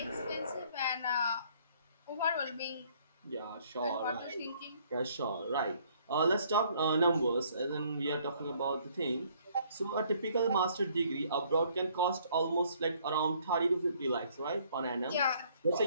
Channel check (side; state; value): both; inverted; correlation -0.63